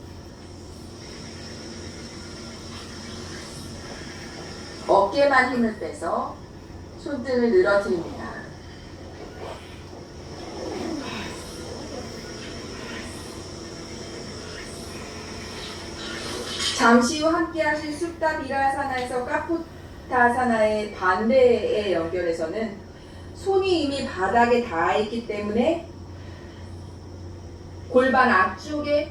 어깨만 힘을 빼서 손등을 늘어뜨립니다. 잠시 후 함께 하실 숫다 비라사나에서 까포타사나의 반대에 연결해서는 손이 이미 바닥에 닿아 있기 때문에 골반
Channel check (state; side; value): identical; both; correlation 1.00